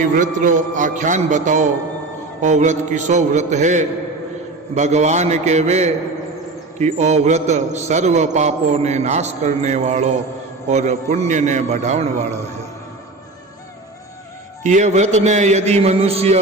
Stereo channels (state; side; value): quieter; left; 3.2 dB